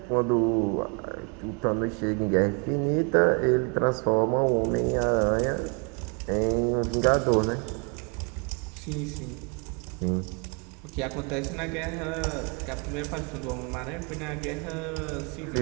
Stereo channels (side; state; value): left; quieter; 35.5 dB